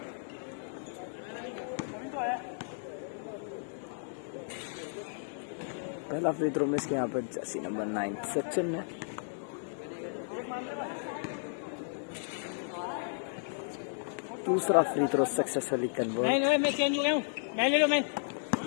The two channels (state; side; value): silent; right; digital silence